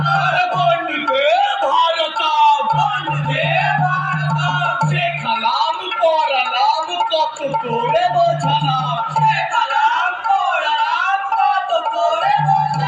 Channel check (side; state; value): both; identical; correlation 1.00